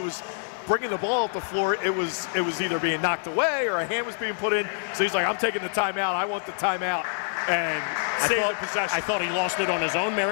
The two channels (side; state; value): right; silent; digital silence